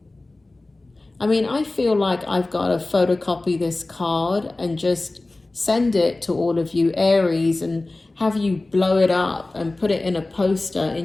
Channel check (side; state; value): right; quieter; 3.0 dB